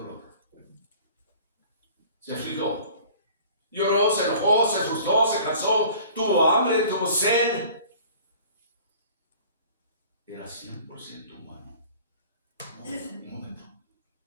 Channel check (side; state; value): both; inverted; correlation -0.47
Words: Se afligió. Lloró, se enojó, se asustó, se cansó, tuvo hambre, tuvo sed. Era 100% humano. Un momento.